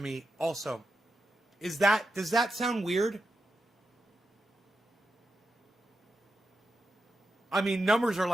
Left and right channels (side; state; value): both; normal; correlation 0.88